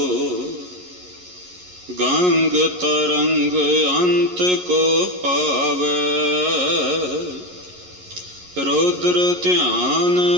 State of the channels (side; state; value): left; late; 11 ms